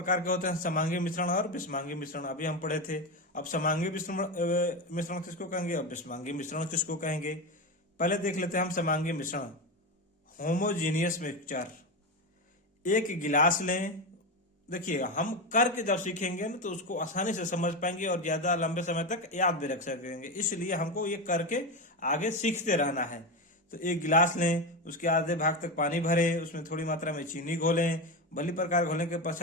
के होते हैं, समांगी मिश्रण और विषमांगी मिश्रण, अभी हम पढ़े थे। अब समांगी मिश्रण किसको कहेंगे और विषमांगी मिश्रण किसको कहेंगे? पहले देख लेते हैं हम समांगी मिश्रण। Homogeneous mixture. एक गिलास लें, देखिए हम करके जब सीखेंगे ना तो उसको आसानी से समझ पाएंगे और ज्यादा लंबे समय तक याद भी रख सकेंगे, इसलिए हमको ये करके आगे सीखते रहना है। तो एक गिलास लें, उसके आधे भाग तक पानी भरें, उसमें थोड़ी मात्रा में चीनी घोलें। भली प्रकार घोलने के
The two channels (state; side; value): normal; both; correlation 0.16